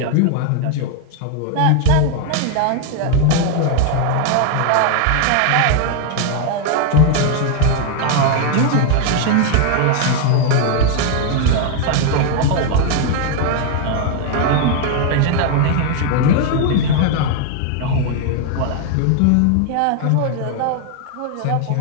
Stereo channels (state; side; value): different; both; correlation 0.00